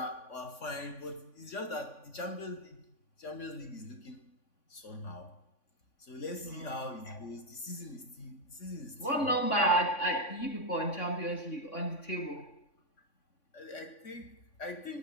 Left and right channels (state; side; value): late; right; 3.5 ms